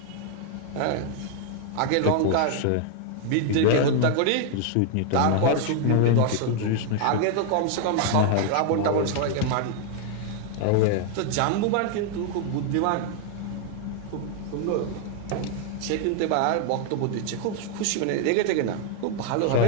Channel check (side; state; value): both; different; correlation 0.00